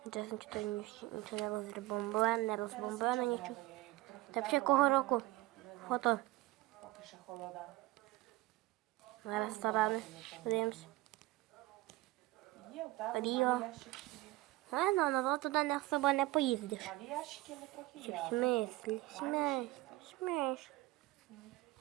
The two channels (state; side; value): quieter; left; 19.3 dB